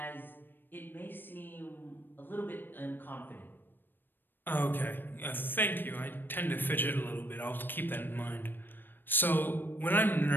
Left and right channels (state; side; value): late; right; 0.094 ms